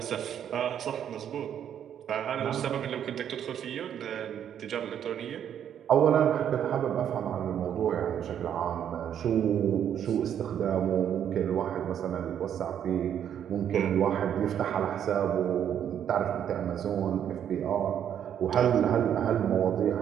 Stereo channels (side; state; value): left; quieter; 9.4 dB